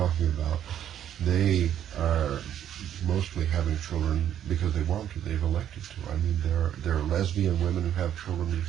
about, they are mostly having children because they want to. They've elected to. I mean, there are lesbian women who have children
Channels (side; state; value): left; quieter; 10.3 dB